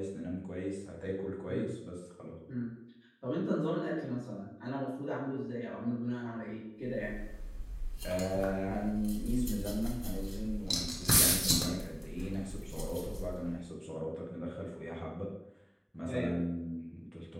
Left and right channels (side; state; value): both; identical; correlation 1.00